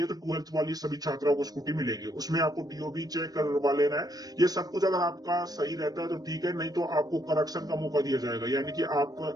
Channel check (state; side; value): late; left; 0.19 ms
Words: तो 12th वाली सभी छात्राओं को स्कूटी मिलेगी। उसमें आपको डीओबी चेक करवा लेना है। ये सब कुछ अगर आपका सही रहता है तो ठीक है, नहीं तो आपको करेक्शन का मौका दिया जाएगा, यानी कि आप